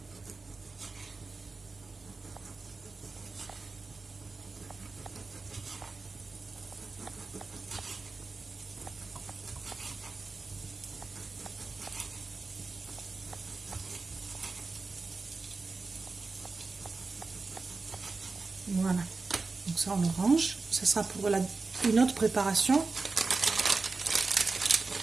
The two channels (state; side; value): quieter; left; 4.0 dB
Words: Voilà, donc ça on le range, ça sera pour une autre préparation.